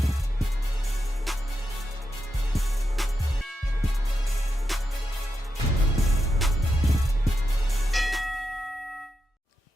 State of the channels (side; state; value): both; normal; correlation 0.86